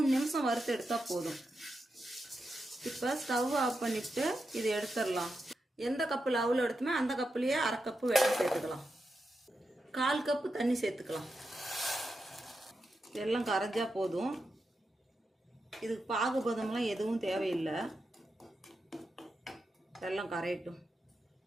நிமிஷம் வறுத்து எடுத்தால் போதும். இப்போ ஸ்டவ் ஆஃப் பண்ணிவிட்டு இதை எடுத்துடலாம். எந்த கப்பில் அவுள் எடுத்துமே அந்த கப்புலேயே 1/2 கப்பு வெல்லம் சேர்த்துக்கலாம். 1/4 கப்பு தண்ணி சேர்த்துக்கலாம். வெல்லம் கரைஞ்சா போதும். இதுக்கு பாகுபதம்லாம் எதுவும் தேவையில்லை. வெல்லம் கரையட்டும்.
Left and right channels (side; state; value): both; normal; correlation 0.87